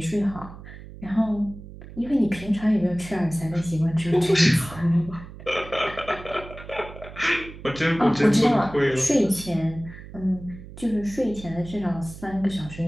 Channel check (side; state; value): right; noise; hum, 15 dB below the sound